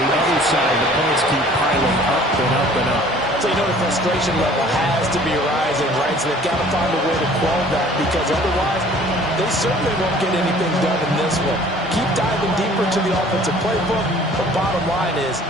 the other side, the points keep piling up and up and up. So you know the frustration level has to be rising, right? So they've got to find a way to quell that because otherwise they certainly won't get anything done in this one. Keep diving deeper to the offensive playbook. The bottom line is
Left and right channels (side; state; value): both; normal; correlation 0.52